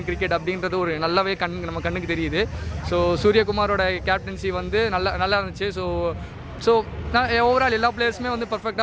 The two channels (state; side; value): identical; both; correlation 1.00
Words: கிரிக்கெட் அப்படின்றது ஒரு நல்லாவே நம்ம கண்ணுக்கு தெரியுது. ஸோ சூரியகுமாரோட கேப்டன்சி வந்து நல்லா இருந்துச்சு. ஸோ நான் ஓவரால் எல்லா பிளேயர்ஸுமே வந்து